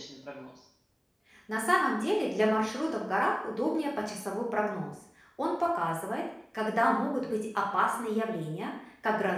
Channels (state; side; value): identical; both; correlation 1.00